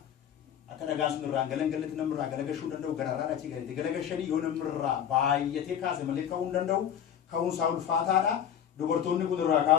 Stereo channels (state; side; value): quieter; right; 9.3 dB